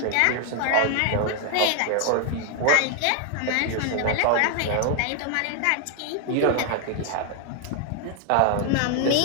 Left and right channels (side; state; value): both; different; correlation 0.00